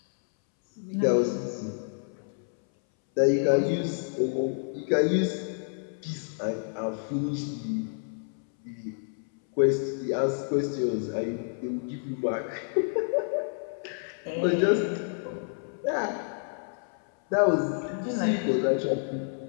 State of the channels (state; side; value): silent; right; 59 dB below the other